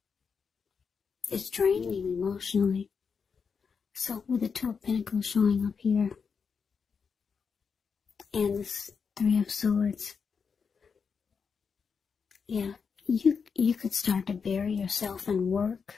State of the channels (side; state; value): right; quieter; 5.8 dB